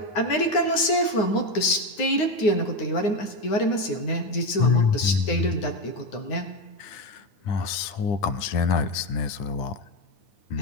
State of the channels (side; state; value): right; late; 9.5 ms